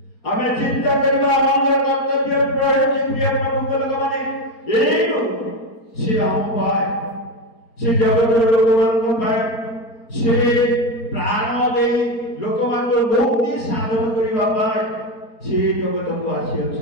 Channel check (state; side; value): late; right; 4.3 ms